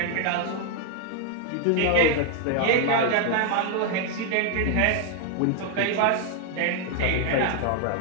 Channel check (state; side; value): different; both; correlation 0.00